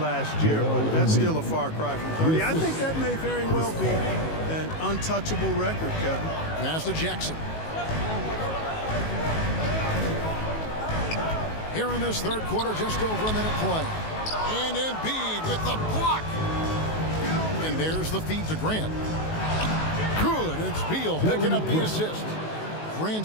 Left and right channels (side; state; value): right; late; 19 ms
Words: year, but that's still a far cry from 30. I think that may very well be an untouchable record, Kevin. Pass to Jackson. Here in this third quarter, just over a minute play. And Embiid with the block. And there's the feed to Grant. Good. It's Beal picking up the assist.